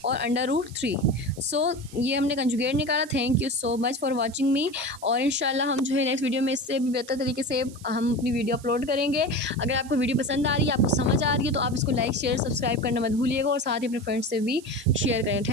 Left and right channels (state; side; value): noise; right; hiss, 20 dB below the sound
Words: और √3। सो ये हमने कंजुगेट निकाला। Thank you so much for watching me, और इंशाल्लाह हम जो है नेक्स्ट वीडियो में इससे भी बेहतर तरीके से हम अपनी वीडियो अपलोड करेंगे। अगर आपको वीडियो पसंद आ रही है, आपको समझ आ रही है, तो आप इसको लाइक शेयर सब्सक्राइब करना मत भूलिएगा और साथ ही अपने फ्रेंड्स से भी शेयर करें।